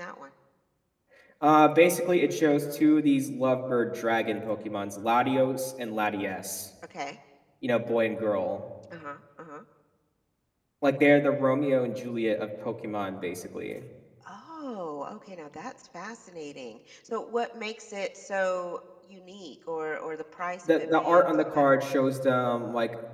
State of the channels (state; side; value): identical; both; correlation 1.00